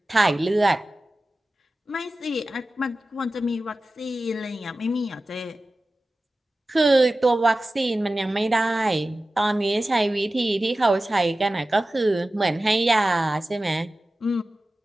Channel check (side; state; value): both; normal; correlation 0.95